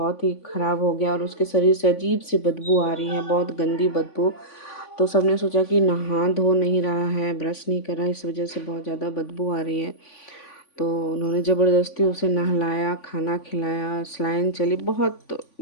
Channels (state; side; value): late; right; 3.5 ms